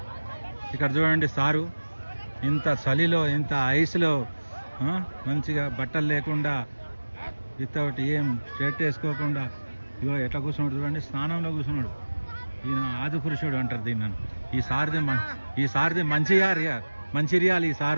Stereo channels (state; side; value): inverted; both; correlation -1.00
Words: ఇక్కడ చూడండి సారు ఇంత చలిలో ఇంత ఐస్లో మంచిగా బట్టలు లేకుండా వితౌట్ ఏం షర్ట్ వేసుకోకుండా ఇగో ఎట్లా కూర్చున్నాడు చూడండి, స్నానంలో కూర్చున్నాడు. ఈయన ఆది పురుషుడు అంటారు దీన్ని. ఈ సారిది మంచిర్యాల. ఈ